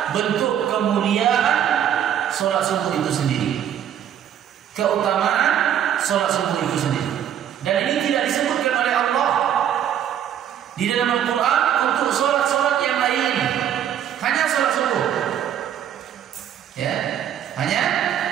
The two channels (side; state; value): left; quieter; 9.8 dB